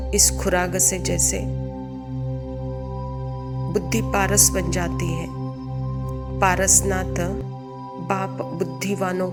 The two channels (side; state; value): both; identical; correlation 1.00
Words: इस खुराक से जैसे बुद्धि पारस बन जाती है। पारसनाथ बाप बुद्धिवानों